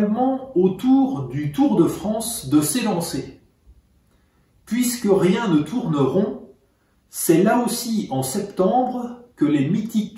au tour du Tour de France de s'élancer. Puisque rien ne tourne rond, c'est là aussi en septembre que les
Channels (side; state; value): both; identical; correlation 1.00